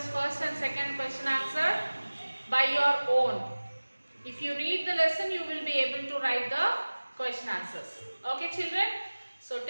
first and second question answer by your own. If you read the lesson, you will be able to write the question answers. Okay, children. So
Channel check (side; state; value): both; inverted; correlation -1.00